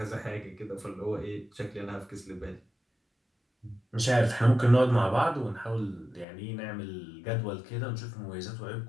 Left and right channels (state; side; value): drops out; right; at 6.2 s